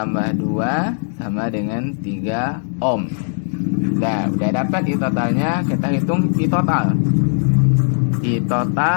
2 sama dengan 3 ohm. Nah, udah dapat I totalnya, kita hitung I total. I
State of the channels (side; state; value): right; silent; digital silence